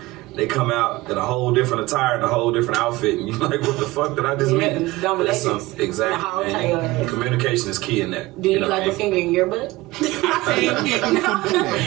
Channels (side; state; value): left; quieter; 19.6 dB